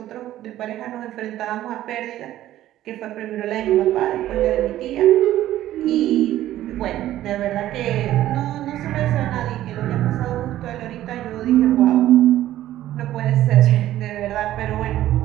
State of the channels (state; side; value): quieter; left; 13.6 dB